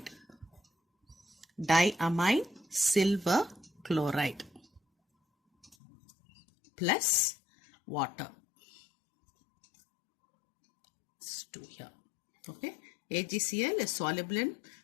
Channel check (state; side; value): drops out; right; at 5.8 s